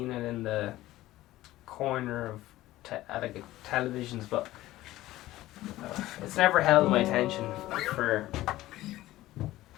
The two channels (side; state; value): right; quieter; 16.1 dB